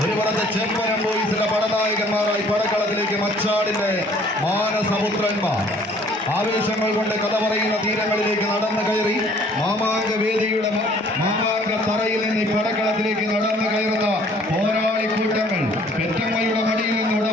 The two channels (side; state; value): both; normal; correlation 0.57